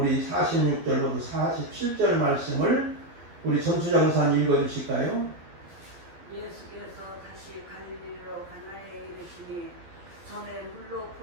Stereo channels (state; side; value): late; left; 12 ms